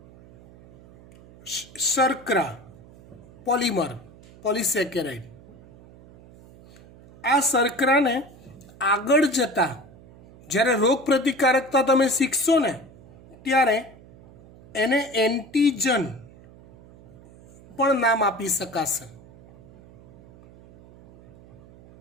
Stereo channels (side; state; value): right; noise; hum, 23 dB below the sound